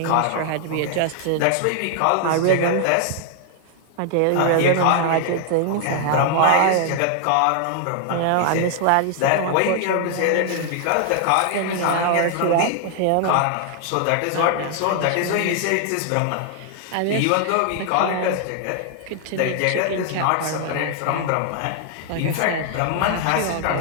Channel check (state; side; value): different; both; correlation 0.00